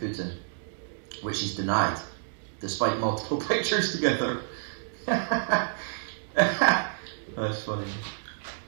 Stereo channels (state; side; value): silent; left; digital silence